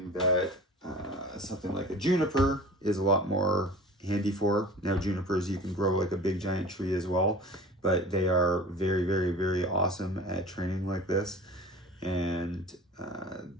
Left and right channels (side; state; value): both; normal; correlation 0.40